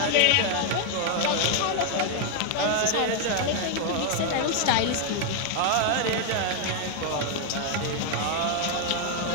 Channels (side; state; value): both; different; correlation 0.00